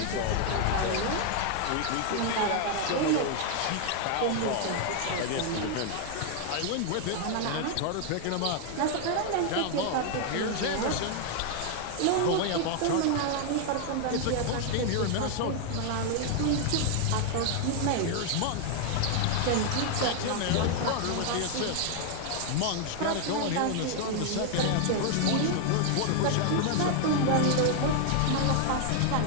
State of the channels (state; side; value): different; both; correlation 0.00